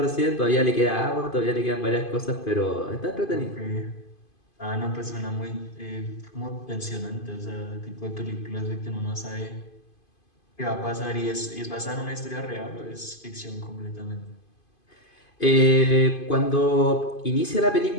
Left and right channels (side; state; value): right; late; 2.5 ms